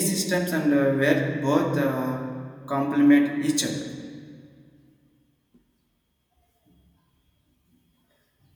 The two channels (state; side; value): identical; both; correlation 1.00